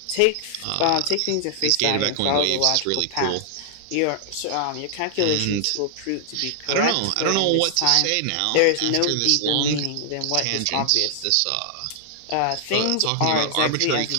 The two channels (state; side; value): different; both; correlation -0.01